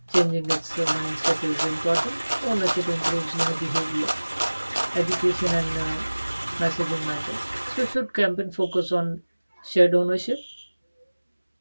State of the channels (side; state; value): both; inverted; correlation -1.00